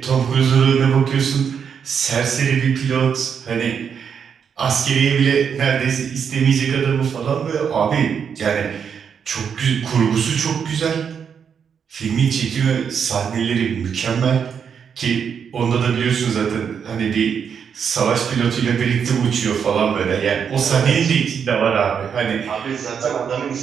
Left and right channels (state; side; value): quieter; left; 7.1 dB